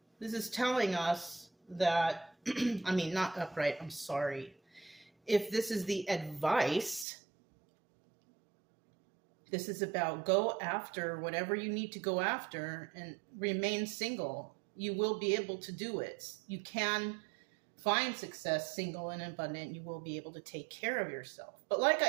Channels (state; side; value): drops out; left; at 7.1 s